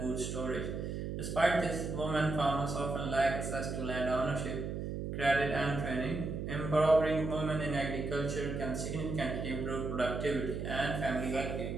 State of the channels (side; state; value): right; noise; hum, 4 dB below the sound